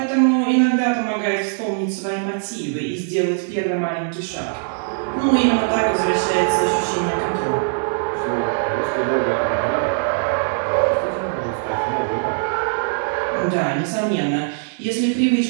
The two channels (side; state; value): left; silent; digital silence